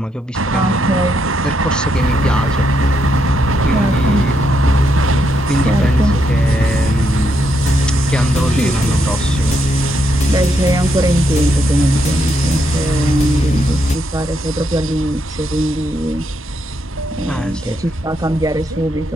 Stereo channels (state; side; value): normal; both; correlation 0.78